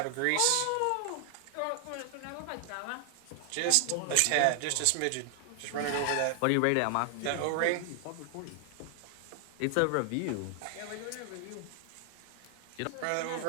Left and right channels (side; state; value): both; different; correlation 0.00